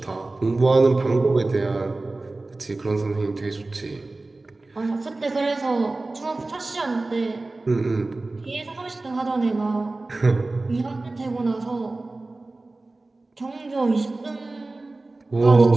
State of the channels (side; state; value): left; quieter; 3.1 dB